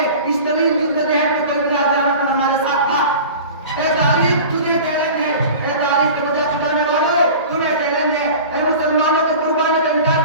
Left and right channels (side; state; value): both; inverted; correlation -0.38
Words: اس طویل جدوجہد میں کوئی بلا قیامت پر ہمارے ساتھ تھا؟ اے تاریخ تجھے چیلنج ہے، اے تاریخ کے وجہ چھپانے والوں تمہیں چیلنج ہے، اے مسلمانوں کی قربانی کا انکار